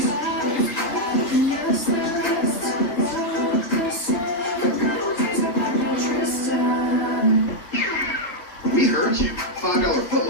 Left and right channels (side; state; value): right; late; 3.1 ms